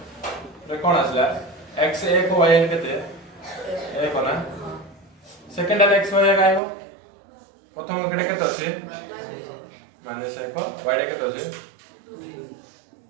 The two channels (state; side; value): drops out; left; at 6.6 s